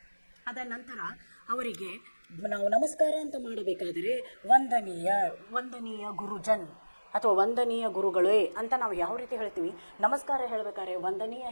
ಅದ ನಂತರ ಅವರಿಗೆ ನಾವು ನಮಸ್ಕಾರ ಅಂತ ಮಾಡಬೇಕಾದರೆ ವಂದನೀಯ ವಂದನೀಯ ಗುರುಜನ್ ಅಥವಾ ವಂದನೀಯ ಗುರುಗಳೇ ಅಂತ ನಾವು ಯಾವ ರೀತಿ ಹೇಳ್ತೀವಿ. ನಮಸ್ಕಾರ ಹೇಳಬೇಕಾದ್ರೆ ವಂದನೀಯ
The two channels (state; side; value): inverted; both; correlation -1.00